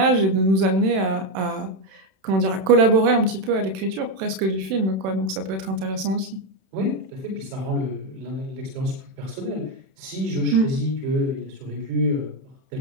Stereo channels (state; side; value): late; left; 31 ms